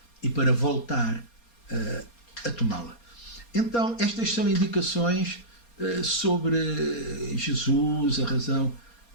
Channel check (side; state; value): right; late; 4.3 ms